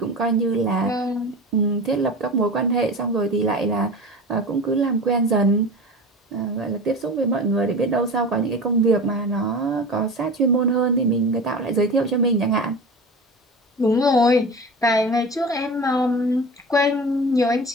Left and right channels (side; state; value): both; normal; correlation 0.33